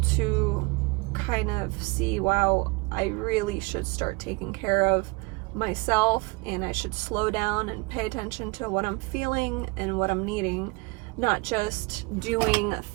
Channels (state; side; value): quieter; left; 27.1 dB